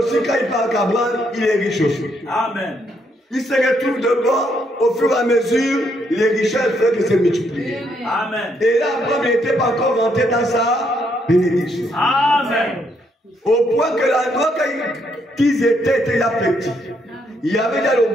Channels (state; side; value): normal; both; correlation 0.74